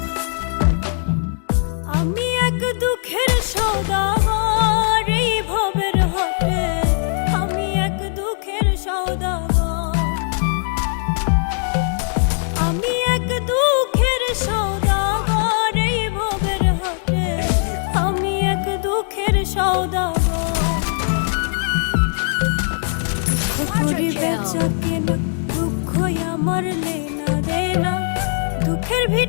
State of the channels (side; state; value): right; silent; digital silence